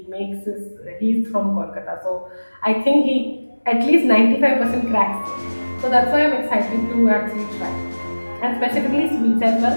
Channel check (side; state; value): both; inverted; correlation -1.00